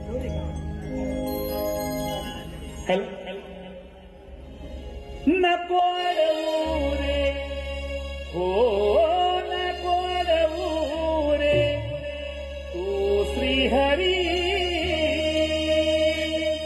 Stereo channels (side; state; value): both; identical; correlation 1.00